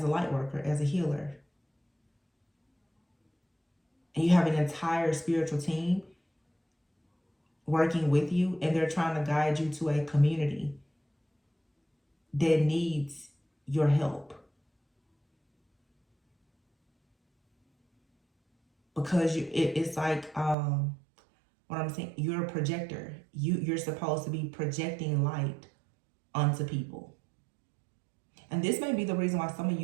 a light worker, as a healer. And you have an entire spiritual team working with you, and they're trying to guide you to a community that needs your help. Because it's like what I'm saying, you're a projector. You're supposed to be projecting light onto people. And this may be the reason why some of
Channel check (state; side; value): drops out; left; at 20.6 s